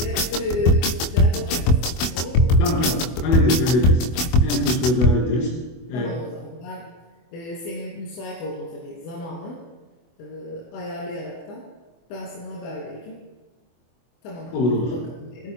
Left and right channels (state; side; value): late; right; 24 ms